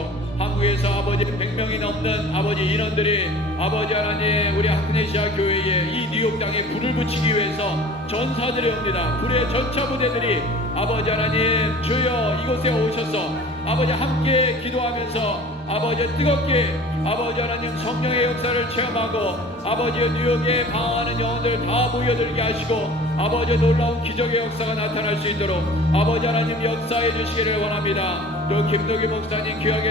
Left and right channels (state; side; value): normal; both; correlation 0.44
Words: 한국에서 아버지 100명이 넘는 아버지 인원들이 아버지 하나님 우리 아크네시아 교회에 이 뉴욕 땅에 불을 붙이기 위해서 전사들이 옵니다. 불의 전차 부대들이 아버지 하나님 주여 이곳에 오셔서 아버지 함께 기도하면서 아버지 뜨겁게 아버지 하나님 성령의 역사를 체험하고 아버지 뉴욕에 방황하는 영혼들 다 모여들게 하시고 아버지 놀라운 기적의 역사가 나타날 수 있도록 아버지 하나님 역사해 주시기를 원합니다. 또 김덕희 목사님